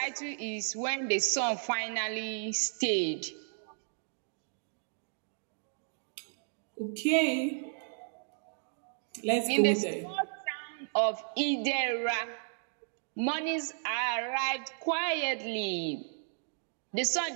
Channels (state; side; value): silent; left; digital silence